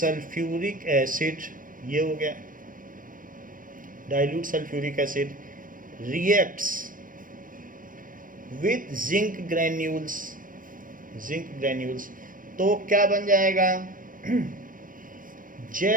acid, ये हो गया, dilute sulphuric acid reacts with zinc granules. Zinc granules तो क्या बन जाएगा?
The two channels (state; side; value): late; left; 0.40 ms